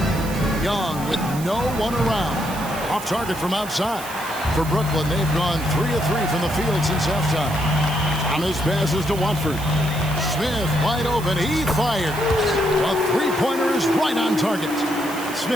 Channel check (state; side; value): noise; right; hiss, 14 dB below the sound